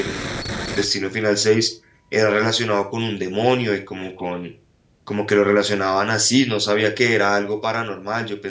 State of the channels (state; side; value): identical; both; correlation 1.00